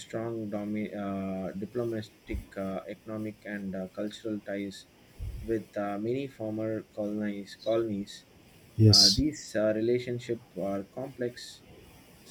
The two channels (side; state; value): both; identical; correlation 1.00